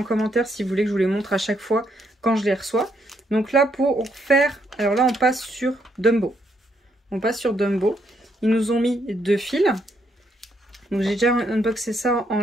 commentaire si vous voulez que je vous les montre à chaque fois quand je les reçois. Donc là pour faire, alors là on passe sur Dumbo. On passe sur Dumbo. Ils nous ont mis 2 fils. Donc j'ai déjà unboxé ça en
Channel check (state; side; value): normal; both; correlation 0.74